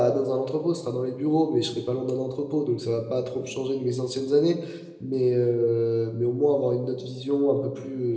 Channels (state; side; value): identical; both; correlation 1.00